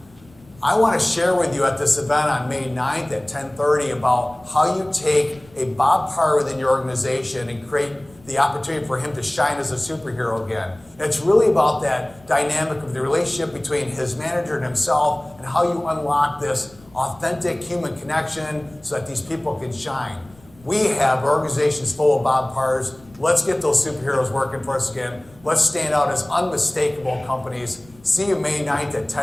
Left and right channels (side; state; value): left; noise; rumble, 26 dB below the sound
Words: I want to share with you at this event on May 9th at 10:30 about how you take a Bob Parr within your organization and create the opportunity for him to shine as a superhero again. And it's really about that dynamic of the relationship between his manager and himself, and how you unlock this authentic human connection so that these people can shine. We have organizations full of Bob Parrs. Let's get those superheroes working for us again. Let's stand out as unmistakable companies. See you May 9th at